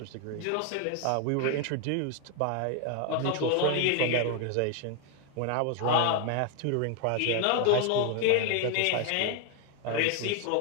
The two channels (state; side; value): different; both; correlation 0.01